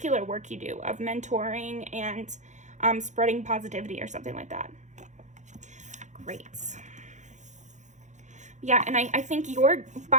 work you do of mentoring and spreading positivity or something like that. Great. Yeah, and I think you're,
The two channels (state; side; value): late; left; 0.35 ms